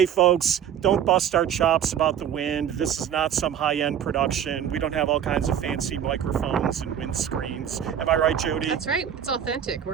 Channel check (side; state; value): left; quieter; 9.2 dB